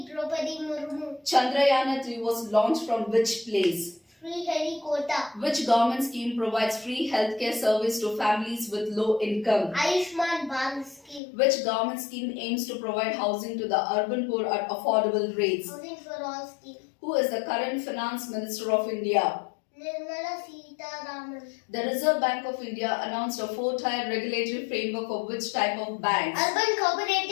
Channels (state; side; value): drops out; right; at 11.2 s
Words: Draupadi Murmu. Chandrayaan-3 was launched from which place? Sriharikota. Which government scheme provides free healthcare service to families with low income? Ayushman Bharat scheme. Which government scheme aims to provide housing to the urban poor at affordable rates? Housing for all scheme. Who is the current finance minister of India? Nirmala Sitharaman. The Reserve Bank of India announced a 4-tier regulatory framework for which type of banks? Urban